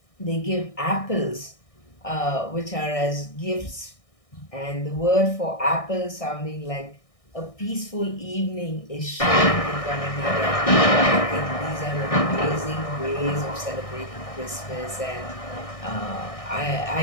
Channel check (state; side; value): late; right; 1.6 ms